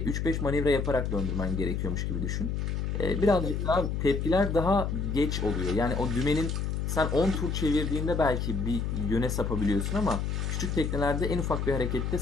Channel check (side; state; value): left; noise; hum, 1 dB below the sound